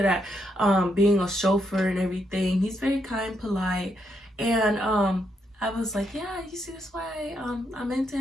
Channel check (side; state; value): both; normal; correlation 0.78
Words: at being a chauffeur and everything. He's very kind, polite, and I was like, yeah, you see, that's why I'm into